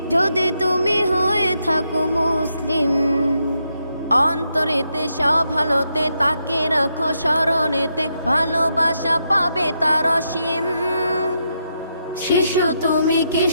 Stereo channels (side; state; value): both; inverted; correlation -0.81